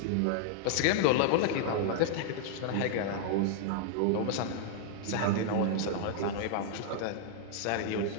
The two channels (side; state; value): both; different; correlation -0.01